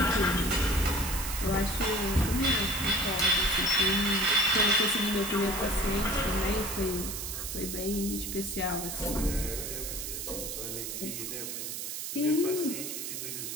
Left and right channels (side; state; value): right; noise; hiss, 5 dB below the sound